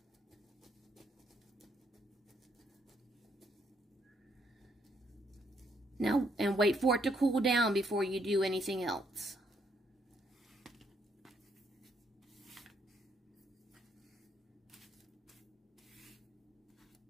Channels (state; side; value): normal; both; correlation 0.72